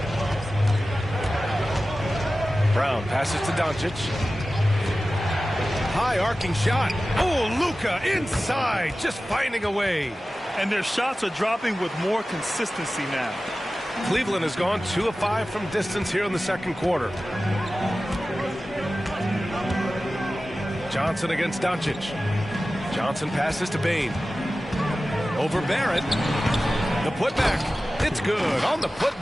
Brown passes to Doncic. High arcing shot. Oh, Luka inside, just finding a way. And their shots are dropping with more consistency now. Cleveland has gone 2 of 5 from distance here in the second quarter. Johnson against Doncic. Johnson passes to Bain. Over Barrett. The putback. It's good on the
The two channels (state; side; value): normal; both; correlation 0.95